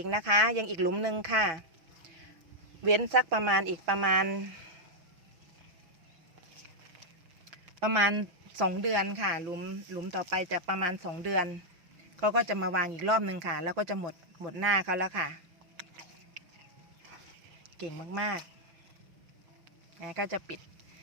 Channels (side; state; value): left; late; 6.0 ms